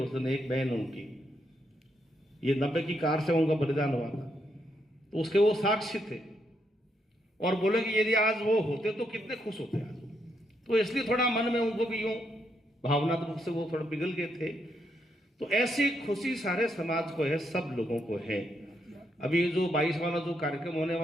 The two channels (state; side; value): normal; both; correlation 0.78